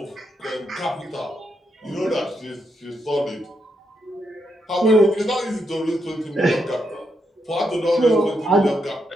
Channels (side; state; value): both; normal; correlation 0.81